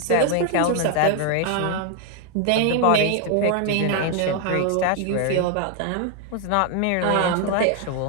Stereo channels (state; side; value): different; both; correlation 0.00